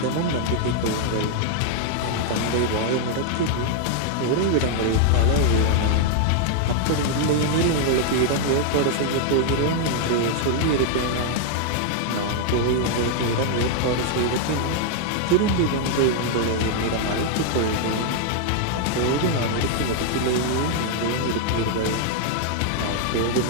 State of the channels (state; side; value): different; both; correlation 0.00